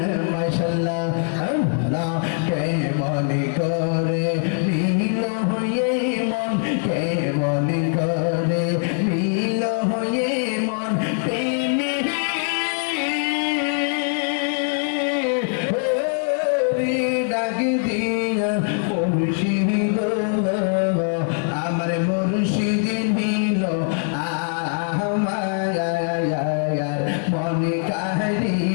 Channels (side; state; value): right; silent; 56 dB below the other